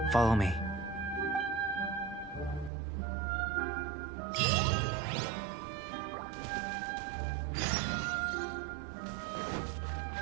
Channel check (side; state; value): left; drops out; at 2.7 s